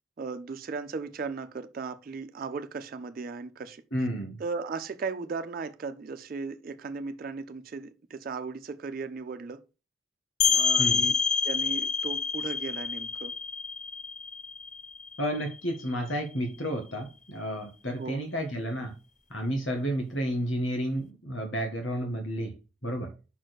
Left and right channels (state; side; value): normal; both; correlation 0.47